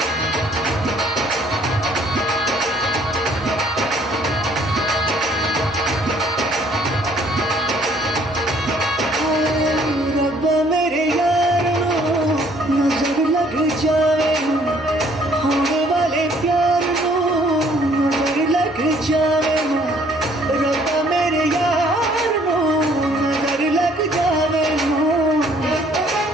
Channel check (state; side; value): normal; both; correlation 0.61